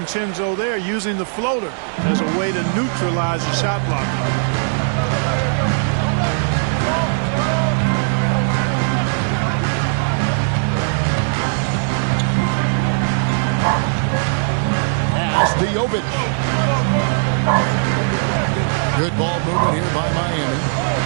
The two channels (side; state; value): left; silent; digital silence